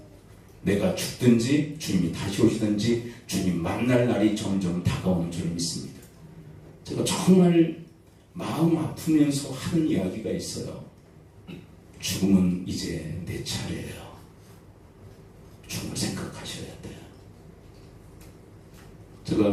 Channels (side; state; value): both; identical; correlation 1.00